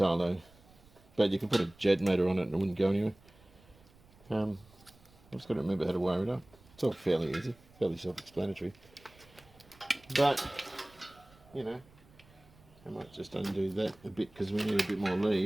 though, but you can put a jet motor on it and it wouldn't go anywhere. I've just got to remember how to wire it up. It's all fairly easy, fairly self-explanatory. But, you know, I might just undo that a bit because we need a bit more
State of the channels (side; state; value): right; noise; rumble, 27 dB below the sound